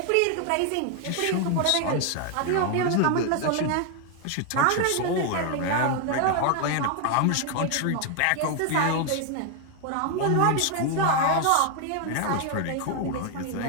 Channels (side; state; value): both; different; correlation 0.01